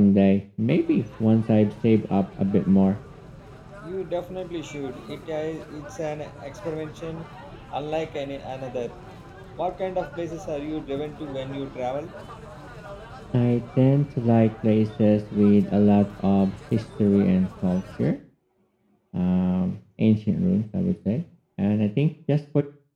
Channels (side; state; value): both; identical; correlation 1.00